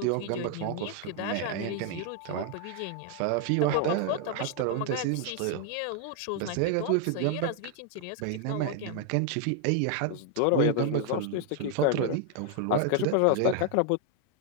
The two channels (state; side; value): different; both; correlation 0.00